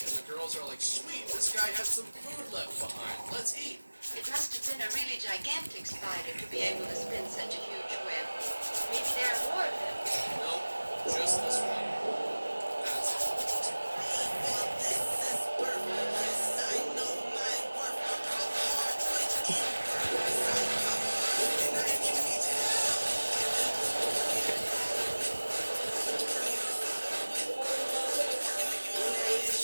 the girls are like, sweet, this guy has some food left behind. Let's eat. It must have been a really gigantic spider to be able to spin such a huge web. Maybe there are more of them. Nope, just this one. That's it.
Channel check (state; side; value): inverted; both; correlation -1.00